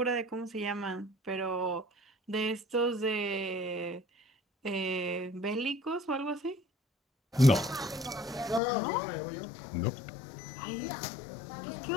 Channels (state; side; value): drops out; right; at 8.6 s